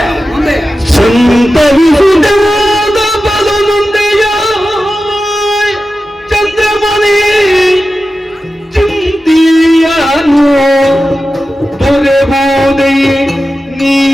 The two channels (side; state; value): both; normal; correlation 0.93